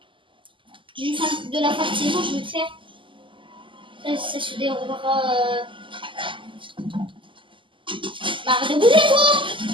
de la fin de saison, je vais le faire. Ça se déroulera. Arrête de bouger, toi!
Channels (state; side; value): late; left; 0.25 ms